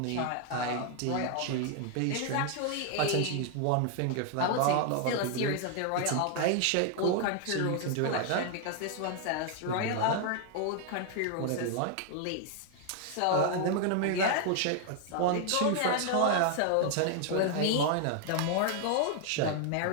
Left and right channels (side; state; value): both; different; correlation 0.00